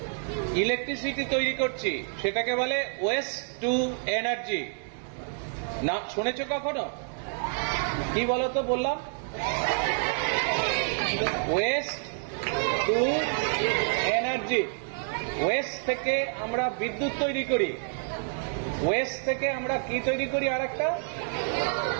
ইলেকট্রিসিটি তৈরি করছি, সেটাকে বলে ওয়েস্ট টু এনার্জি। না শুনেছো কখনো? কি বলতো বললাম? West two energy. ওয়েস্ট থেকে আমরা বিদ্যুৎ তৈরি করি, ওয়েস্ট থেকে আমরা কি তৈরি করি?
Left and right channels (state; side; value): silent; left; 59 dB below the other